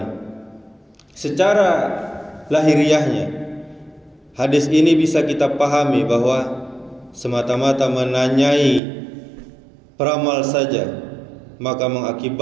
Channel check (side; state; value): left; drops out; at 8.8 s